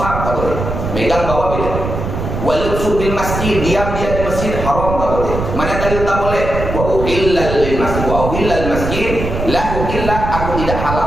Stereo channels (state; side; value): noise; right; rumble, 4 dB below the sound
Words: tak boleh. Megang bawa beda. Walubsu fil masjid, diam dia di masjid, haram, tak boleh. Mana dalil tak boleh? Wa uhilla lil masjid, wa uhilla al masjid, la uhilla, aku tidak